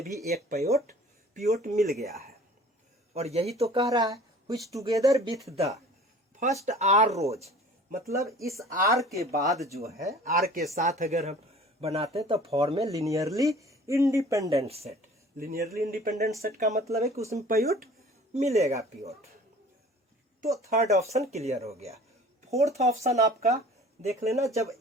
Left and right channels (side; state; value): both; normal; correlation 0.46